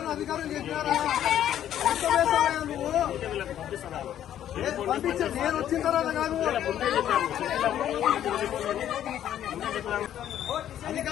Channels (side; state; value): right; quieter; 11.0 dB